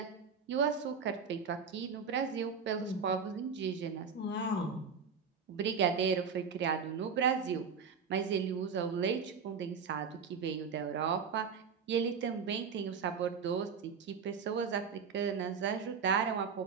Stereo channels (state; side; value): quieter; left; 6.0 dB